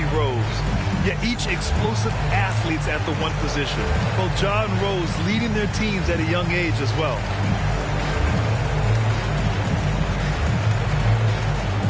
Rose. Yet each explosive athletes at the one position. Both Ja and Rose leading their teams at a young age as well.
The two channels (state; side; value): identical; both; correlation 1.00